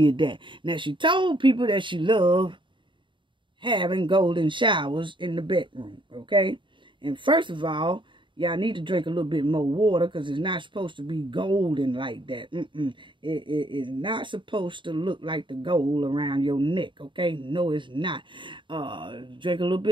that. Now, she told people that she loved having golden showers in the bedroom, okay? And first of all, y'all need to drink a little bit more water because it's not supposed to be golden like that. It is not supposed to look like the gold around your neck, okay? No, it's not. Drink a little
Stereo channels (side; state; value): left; late; 0.23 ms